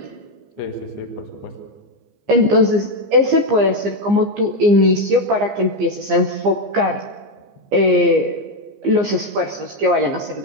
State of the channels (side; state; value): left; late; 15 ms